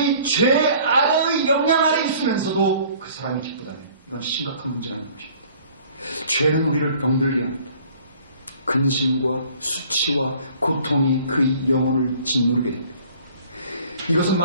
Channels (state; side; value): inverted; both; correlation -0.53